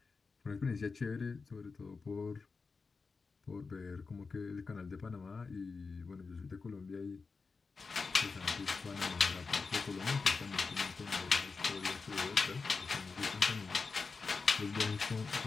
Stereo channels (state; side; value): quieter; right; 4.5 dB